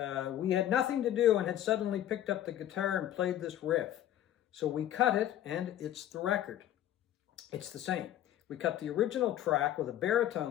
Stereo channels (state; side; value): quieter; right; 12.1 dB